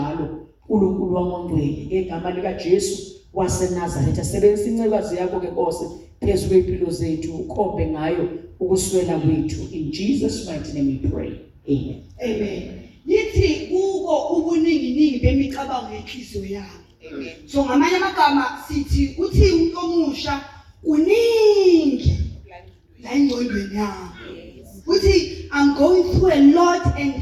uNkulunkulu wangongcwele ngegama lika Jesu waseNazaretha sebenzisa incekazi yakho ke Nkosi phezulu kwempilo zethu ukhombe ngayo ukuswela kwethu in Jesus mighty name we pray amen amen lithi kuko ubuningi bemicabango yenhliziyo yami amen so ngamanye amagama sithi uthi umuntu omusha uningi la ingqondweni yami uthi I'm going through a lot and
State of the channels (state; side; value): identical; both; correlation 1.00